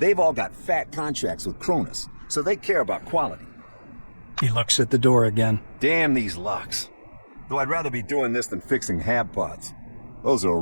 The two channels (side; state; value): both; inverted; correlation -1.00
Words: all got fat contracts with CRONUS, so they care about quality. He looks at the door again. Damn these locks. Though I'd rather be doing this than fixing hab pods. Those are a